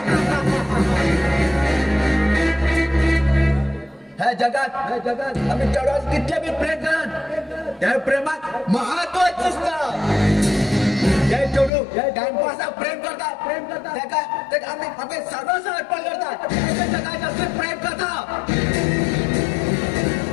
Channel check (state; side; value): drops out; right; at 11.7 s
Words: ह्या जगात आम्ही चढवत कितले बी प्रेम करात त्या प्रेमात महत्वाचं असतं. जय चढू टाइमपास प्रेम करतात आम्ही आपले सर्वस्व अर्पण करतात जगात असं प्रेम करतात.